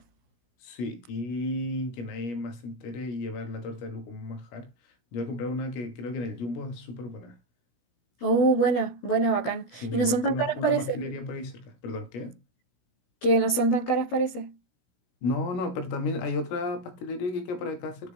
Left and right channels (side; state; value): right; late; 17 ms